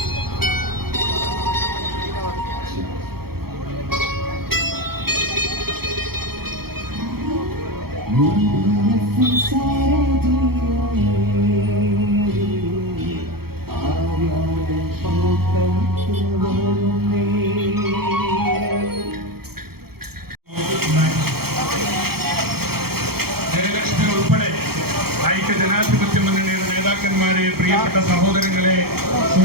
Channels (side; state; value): left; late; 0.95 ms